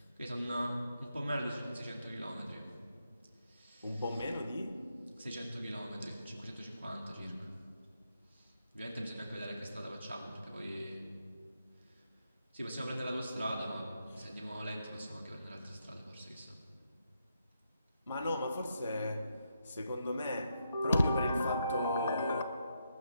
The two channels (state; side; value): inverted; both; correlation -0.81